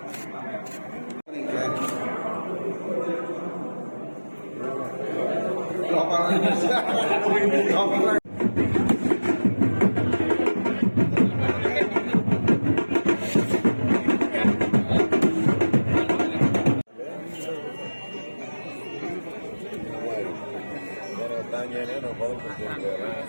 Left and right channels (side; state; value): both; inverted; correlation -1.00